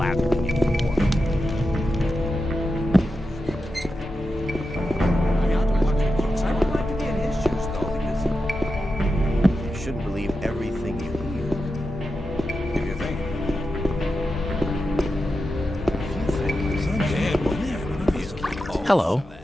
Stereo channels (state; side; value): normal; both; correlation 0.89